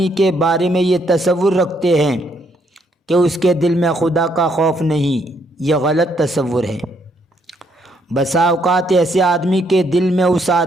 کے بارے میں یہ تصور رکھتے ہیں کہ اس کے دل میں خدا کا خوف نہیں۔ یہ غلط تصور ہے۔ بسا اوقات ایسے آدمی کے دل میں اس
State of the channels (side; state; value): both; normal; correlation 0.72